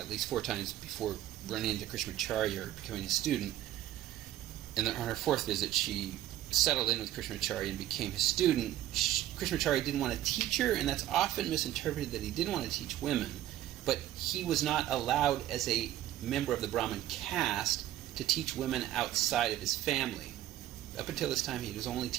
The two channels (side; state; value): left; quieter; 13.3 dB